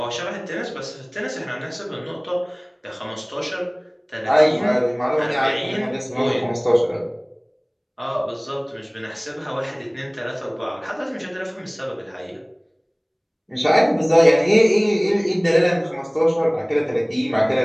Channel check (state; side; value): identical; both; correlation 1.00